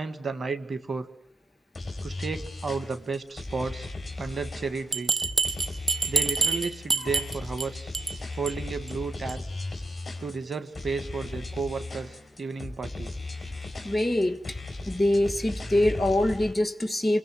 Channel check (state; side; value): normal; both; correlation 0.82